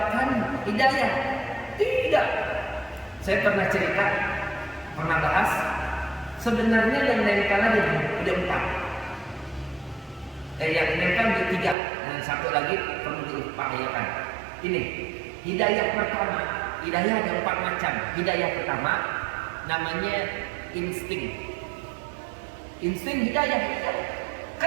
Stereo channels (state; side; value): drops out; left; at 11.8 s